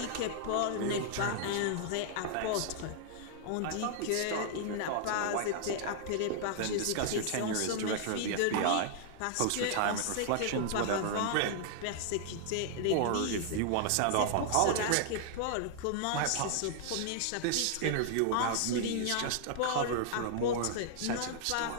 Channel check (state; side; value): different; both; correlation -0.01